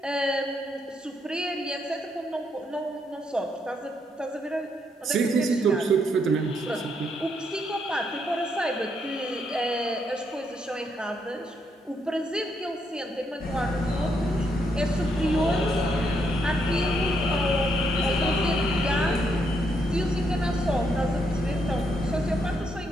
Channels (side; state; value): both; normal; correlation 0.76